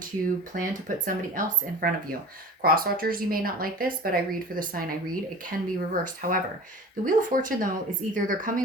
plan to put somebody else in front of you. Cross watchers, you may not like this, but I read for the sign I read. It can be reversed. However, the Wheel of Fortune, though, is either they're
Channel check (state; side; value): normal; both; correlation 0.38